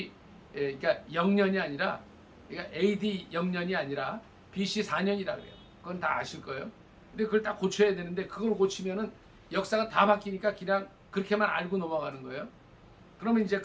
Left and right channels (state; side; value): identical; both; correlation 1.00